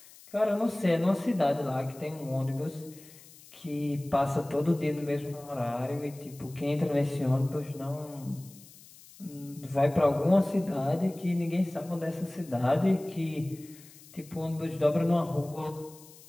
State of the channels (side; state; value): left; noise; hiss, 22 dB below the sound